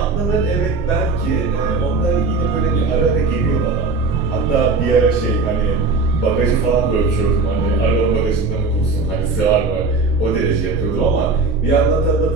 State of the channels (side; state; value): left; quieter; 4.0 dB